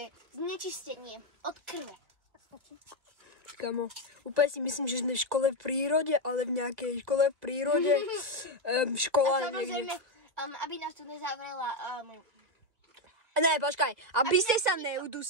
znečistenie od krve. Kamo, úplne si myslím, že sme v škole v prírode, ale v nejakej škole v prírode, škola niekde. A samozrejme, aby nás tu nezavrela... Ne, počkaj, aby ste sa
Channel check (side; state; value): left; late; 1.9 ms